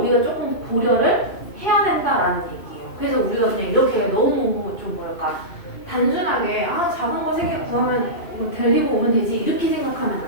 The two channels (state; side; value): late; right; 2.6 ms